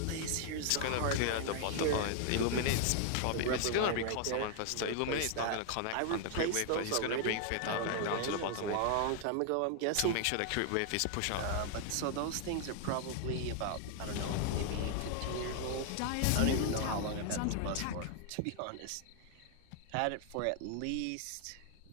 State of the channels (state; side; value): different; both; correlation 0.00